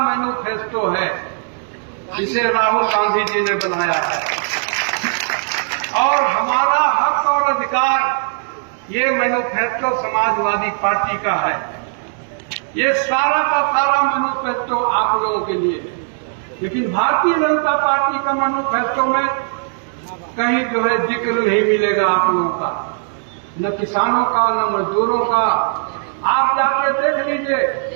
है, इसे राहुल गांधी जी ने बनाया है। और हमारा हक और अधिकार, ये मैनिफेस्टो समाजवादी पार्टी का है। ये सारा का सारा मैनिफेस्टो आप लोगों के लिए है। लेकिन भारतीय जनता पार्टी का मैनिफेस्टो में कहीं जो है जिक्र नहीं मिलेगा आप लोगों का, न किसानों का, न मजदूरों का। आप जाके देख लीजिए,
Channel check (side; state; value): left; silent; digital silence